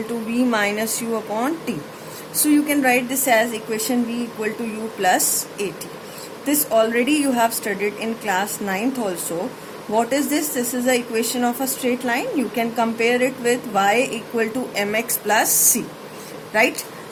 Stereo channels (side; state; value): both; identical; correlation 1.00